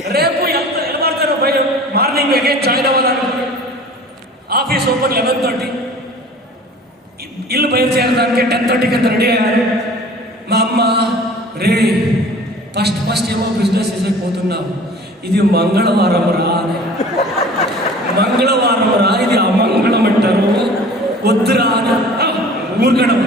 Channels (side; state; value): both; normal; correlation 0.45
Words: రేపు ఎంత ఎడబడతానో పోయి మార్నింగ్ అగైన్ జాయిన్ అవ్వాలనుకుని ఆఫీస్ ఓపెన్ 11:30, ఇల్లు బయలుదేరడానికి 10:30కి అంత రెడీ అయ్యారు. మా అమ్మ రే ఫస్ట్ ఏమో బిజినెస్ పోతున్నావు, ఇది మంగళవారం రా అని. మంగళవారం రా, ఇది అమంగళం అంటారు, వద్దురా అని ఊరుకడం.